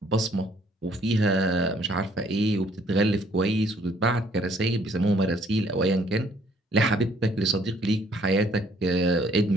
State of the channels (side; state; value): both; normal; correlation 0.63